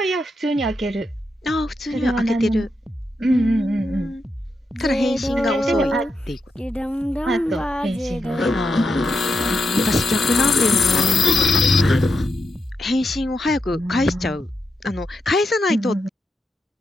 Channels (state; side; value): normal; both; correlation 0.85